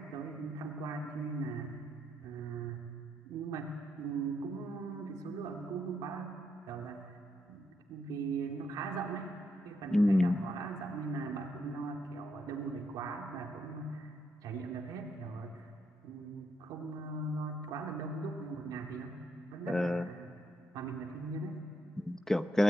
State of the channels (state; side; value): normal; both; correlation 0.78